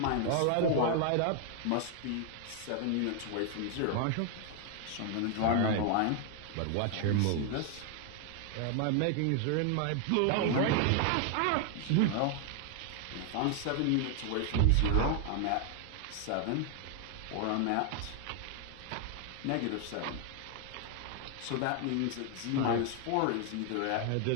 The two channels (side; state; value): both; different; correlation 0.00